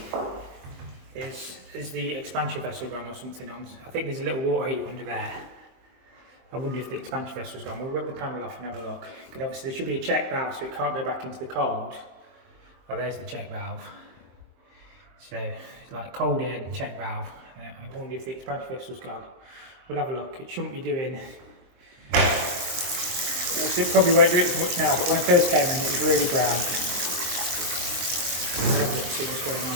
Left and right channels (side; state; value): left; late; 23 ms